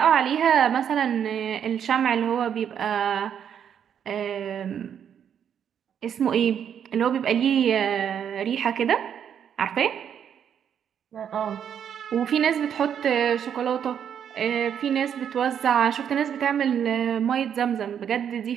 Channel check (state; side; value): quieter; left; 8.6 dB